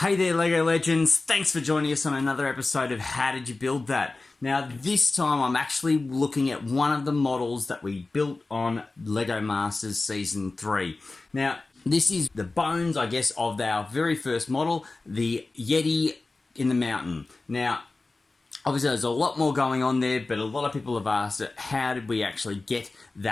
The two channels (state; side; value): quieter; right; 3.4 dB